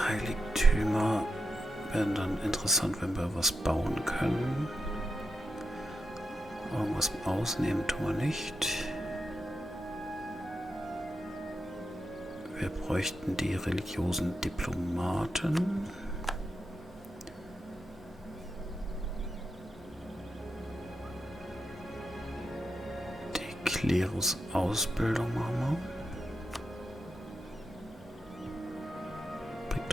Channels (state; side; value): normal; both; correlation 0.86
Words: Heiligtümer werden dann interessant, wenn wir was bauen können. Irgendwas ausnehmen tun wir nicht. Wir bräuchten die religiösen Diplomaten. Die Klerusausbildung machen wir. Bringt